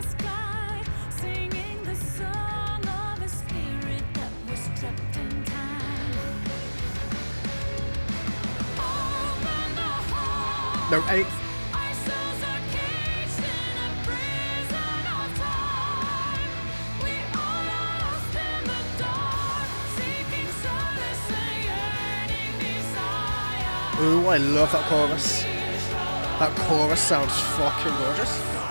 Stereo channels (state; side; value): inverted; both; correlation -1.00